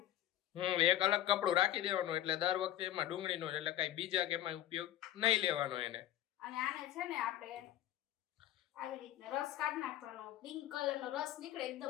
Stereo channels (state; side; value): quieter; right; 12.6 dB